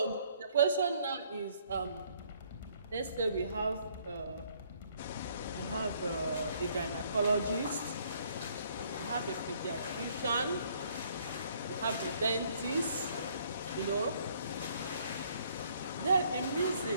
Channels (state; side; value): inverted; both; correlation -0.64